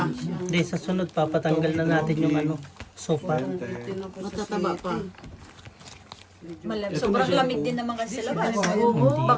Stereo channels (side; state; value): both; identical; correlation 1.00